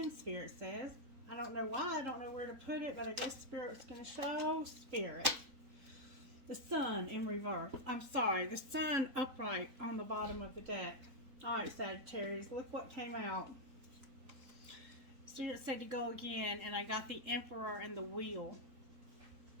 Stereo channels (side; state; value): left; late; 3.8 ms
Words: Spirit says. I don't know why. I don't know where to put it, but I guess Spirit's going to show Spirit. The sun in reverse. I'm sorry. The sun upright on the bottom of the deck. Alright, Sagittarius. Look what came out. Spirit said to go again, and I got the Emperor and the Wheel.